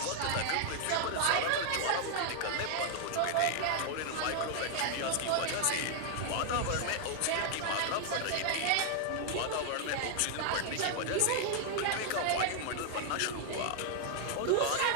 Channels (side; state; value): both; different; correlation 0.00